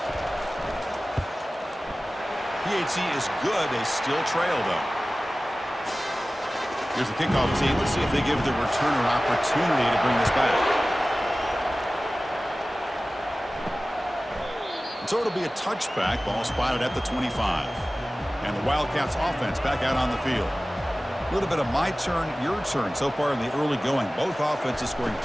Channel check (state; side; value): normal; both; correlation 0.97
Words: PHC is good. They still trail, though. Here's the kickoff team. Let's see if they give the returner opportunity to bring this back. And so it'll be a touchback. Ball spotted at the 25. And the Wildcats offense back out on the field. A little bit of my turn, your turn so far in the early going. Both offenses scoring